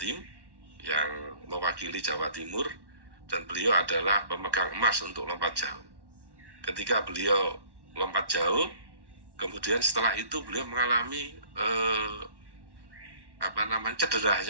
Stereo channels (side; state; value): left; late; 1.1 ms